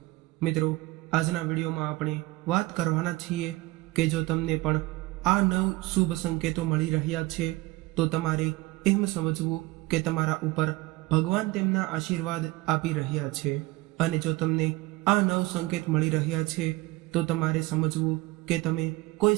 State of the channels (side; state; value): left; quieter; 20.5 dB